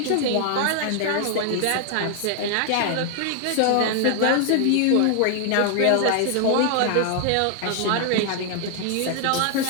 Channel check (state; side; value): different; both; correlation 0.00